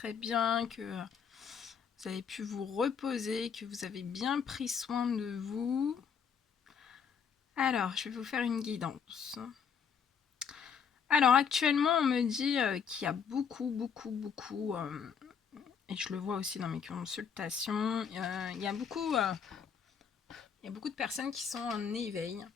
bien, que vous avez pu vous reposer, que vous avez bien pris soin de vous. Alors, je vais vous faire une guidance. Alors, actuellement, on me dit qu'il y a beaucoup, et je le vois aussi dans mes consultations, il y a beaucoup de personnes qui sont en éveil.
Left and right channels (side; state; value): right; quieter; 6.9 dB